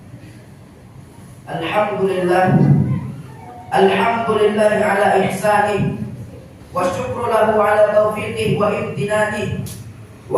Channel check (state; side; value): identical; both; correlation 1.00